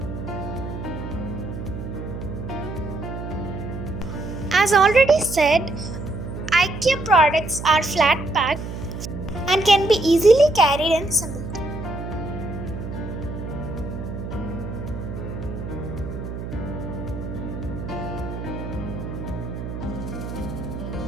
As already said, IKEA products are flat packed and can be easily carried and assembled.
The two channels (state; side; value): noise; right; hum, 7 dB below the sound